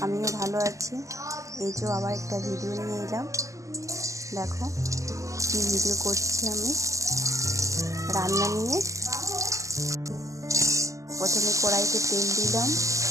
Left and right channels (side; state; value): left; late; 0.15 ms